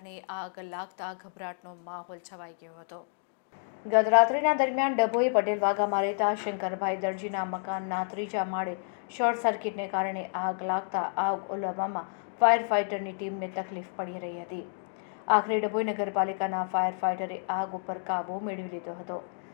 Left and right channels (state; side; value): silent; right; digital silence